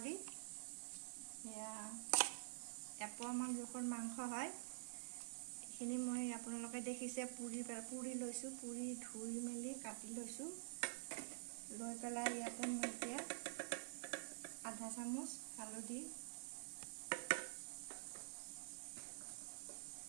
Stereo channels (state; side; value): silent; left; digital silence